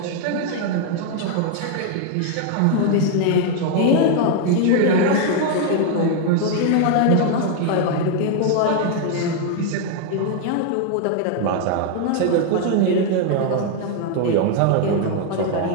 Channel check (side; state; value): both; different; correlation 0.00